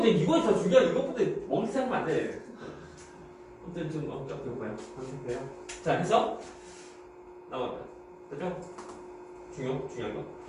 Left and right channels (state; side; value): identical; both; correlation 1.00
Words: 더 중요해 이것보다 먹을 생각하면 안 돼 아무튼 좀 배고파요 그래요 자 해서 나왔다 그죠? 중요한 거